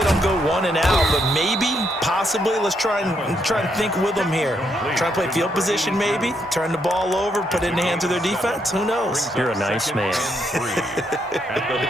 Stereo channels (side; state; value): both; normal; correlation 0.76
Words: go 1 and out, but maybe, possibly, let's try and think with them here. Try and play field position maybe, turn the ball over, put it in the hands of their defense. Who knows? You're a nice man.